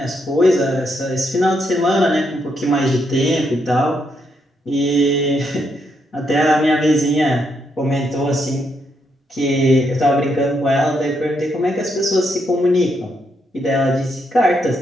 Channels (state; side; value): normal; both; correlation 0.78